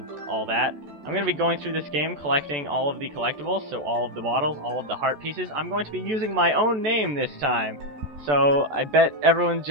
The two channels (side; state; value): left; late; 14 ms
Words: all that. I'm going to be going through this game collecting all of the collectibles, so all of the bottles, all of the heart pieces. I'm going to be using my own name this time. So I bet everyone's